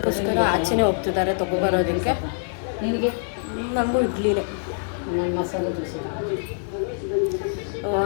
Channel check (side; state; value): right; silent; 60 dB below the other